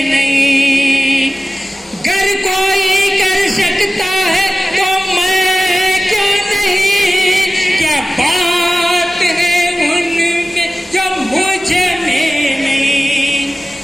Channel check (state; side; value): normal; both; correlation 0.97